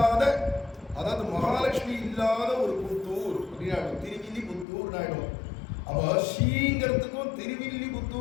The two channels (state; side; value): drops out; right; at 4.7 s